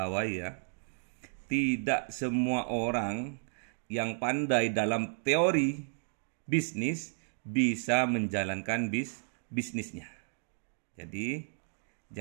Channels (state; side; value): silent; left; digital silence